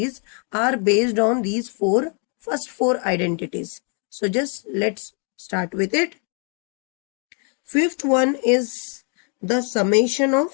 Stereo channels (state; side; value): quieter; right; 39.5 dB